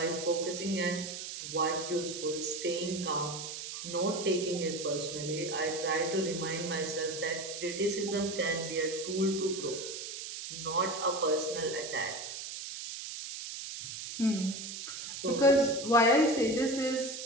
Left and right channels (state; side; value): noise; right; hiss, 8 dB below the sound